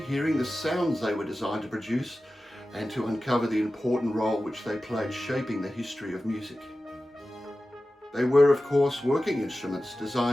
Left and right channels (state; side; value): normal; both; correlation 0.94